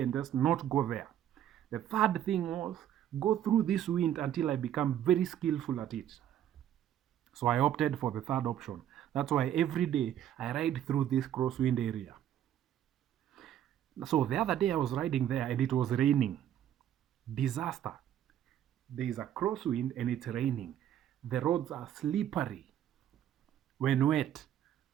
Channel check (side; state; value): left; quieter; 10.8 dB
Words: and just not go there. The third thing was go through this wind until I become very skillful at it. So I opted for the third option. That's why every day I ride through this crosswind area. So the other day I was riding there and it was raining. Disaster. There is a crosswind and it's raining. The roads are slippery. When wet,